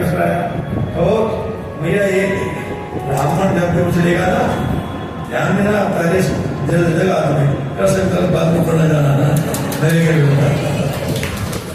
कराया। तो भैया ये ब्राह्मण जब भी कुछ लेगा ना, ध्यान में ना पहले जगह तुम्हें कर सकता बात में पढ़ना जाना ना मेरे के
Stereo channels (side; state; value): both; identical; correlation 1.00